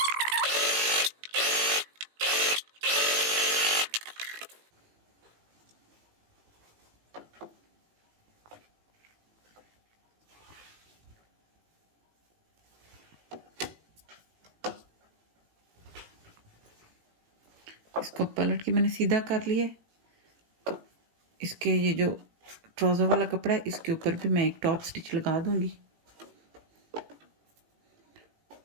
इसको पलट के मैंने सीधा कर लिया। तो इसके ये जो ट्राउज़र वाला कपड़ा है इसके ऊपर भी मैं एक टॉप स्टिच लगा दूंगी,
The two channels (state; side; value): late; left; 18 ms